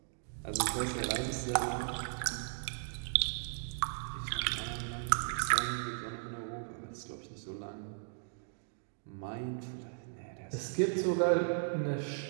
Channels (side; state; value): left; silent; digital silence